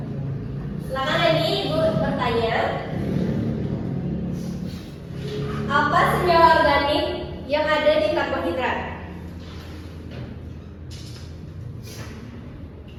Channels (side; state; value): both; identical; correlation 1.00